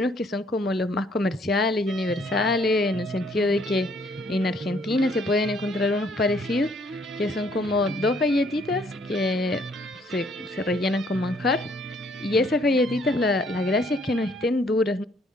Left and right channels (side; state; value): both; normal; correlation 0.64